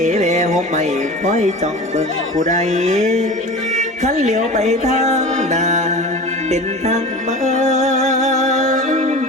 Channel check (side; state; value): both; normal; correlation 0.34